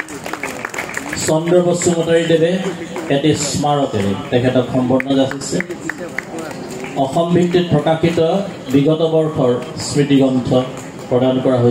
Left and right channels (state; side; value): identical; both; correlation 1.00